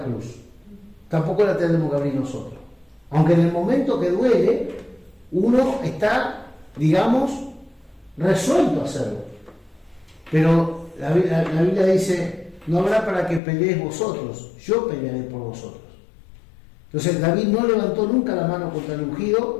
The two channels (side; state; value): right; drops out; at 13.4 s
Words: cruz. Tampoco la tenemos que abrir nosotros. Aunque en el momento que duele, uno está, digamos, resuelto a hacerlo. Pero la Biblia dice, no habrá para que peleéis vosotros, yo pelearé por vosotros. Entonces David no levantó nunca la mano contra el